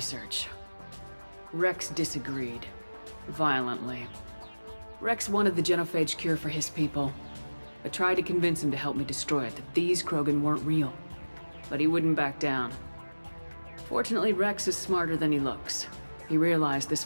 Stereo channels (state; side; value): inverted; both; correlation -1.00